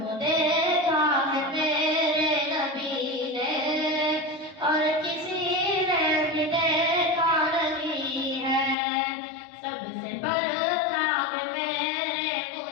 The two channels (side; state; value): right; drops out; at 8.8 s